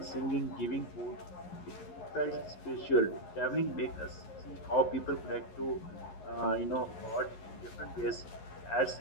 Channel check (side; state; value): right; late; 11 ms